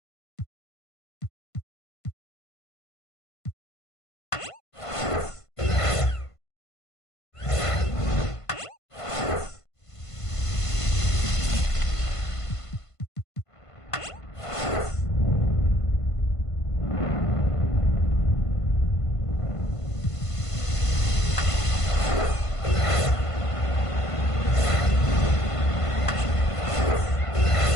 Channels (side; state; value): right; late; 1.5 ms